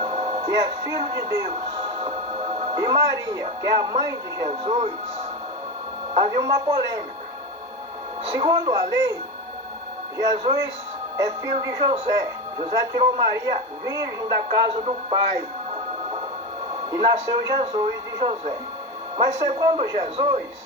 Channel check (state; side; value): normal; both; correlation 0.19